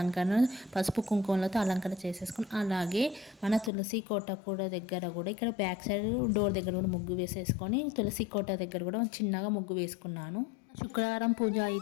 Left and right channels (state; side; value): drops out; right; at 3.7 s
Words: పసుపు కుంకుమలతో అలంకరణ చేసేసుకొని, అలాగే మన తులసి కోట కూడా దగ్గర కూడా ఇక్కడ బ్యాక్ సైడ్ డోర్ దగ్గర కూడా ముగ్గు వేసేసుకొని తులసి కోట దగ్గర కూడా చిన్నగా ముగ్గు వేసుకున్నాను. శుక్రవారం పూజ